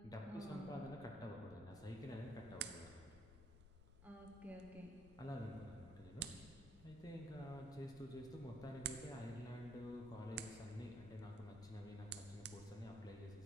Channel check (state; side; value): noise; left; rumble, 14 dB below the sound